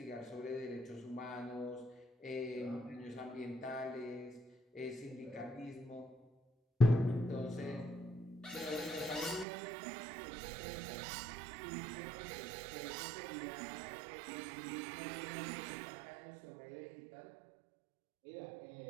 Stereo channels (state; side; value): drops out; left; at 9.5 s